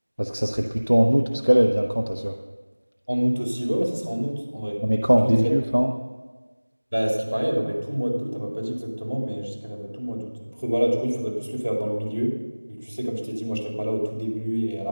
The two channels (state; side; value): inverted; both; correlation -1.00